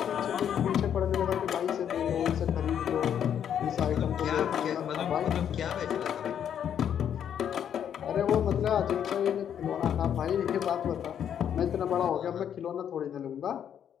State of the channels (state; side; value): quieter; right; 9.0 dB